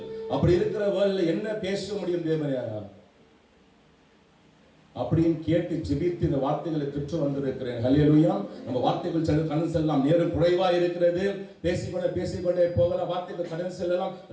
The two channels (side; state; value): both; identical; correlation 1.00